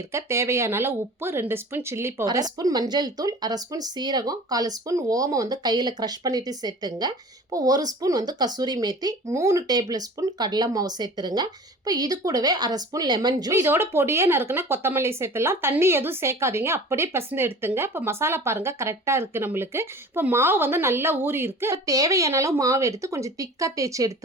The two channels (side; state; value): both; normal; correlation 0.41